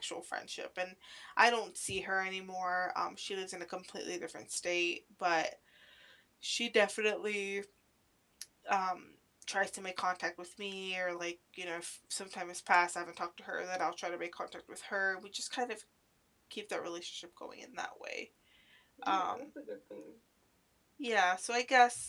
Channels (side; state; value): both; identical; correlation 1.00